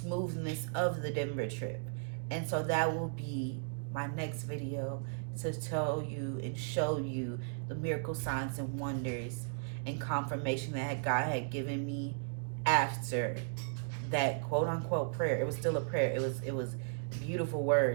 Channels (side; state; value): left; silent; digital silence